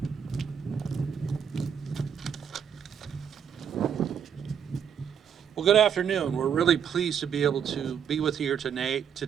Well, good afternoon. We're really pleased to be able to be with you here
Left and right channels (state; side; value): quieter; left; 7.9 dB